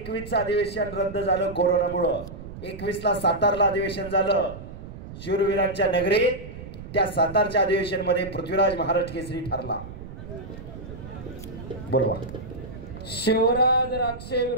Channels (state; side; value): noise; right; rumble, 12 dB below the sound